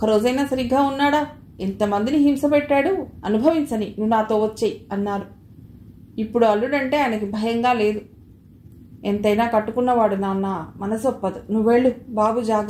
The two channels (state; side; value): identical; both; correlation 1.00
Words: సరిగ్గా ఉన్నాడా? ఎంతమందిని హింస పెట్టాడు? అనుభవించని, నువ్వు నాతో వచ్చేయి అన్నారు. ఇప్పుడు అల్లుడంటే ఆయనకి భయంగా లేదు. ఎంతైనా కట్టుకున్నవాడు నాన్న, మనసొప్పదు. నువ్వెళ్ళు బాబు,